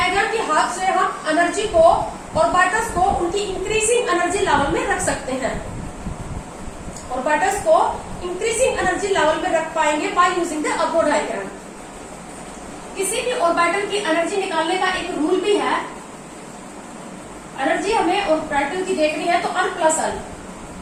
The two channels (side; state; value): both; identical; correlation 1.00